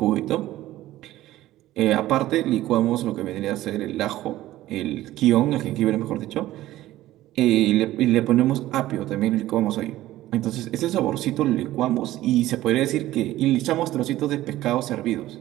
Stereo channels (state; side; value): quieter; left; 15.3 dB